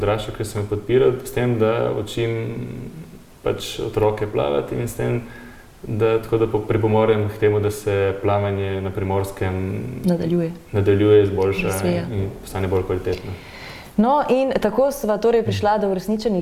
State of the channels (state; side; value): identical; both; correlation 1.00